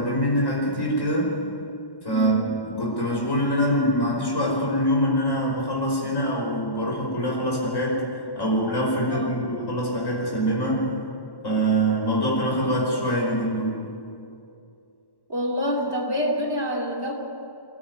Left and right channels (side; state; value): right; late; 1.1 ms